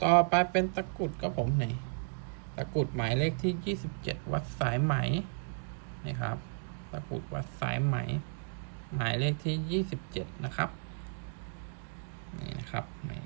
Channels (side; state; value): left; silent; digital silence